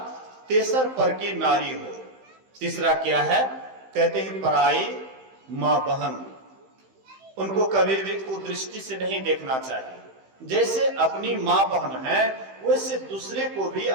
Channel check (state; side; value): late; left; 15 ms